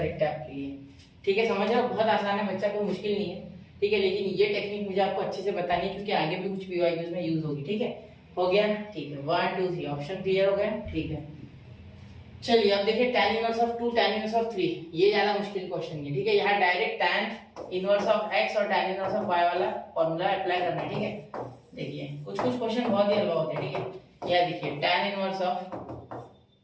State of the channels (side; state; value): both; identical; correlation 1.00